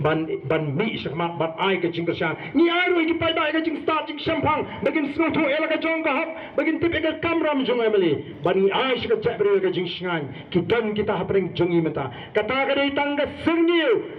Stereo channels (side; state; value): both; identical; correlation 1.00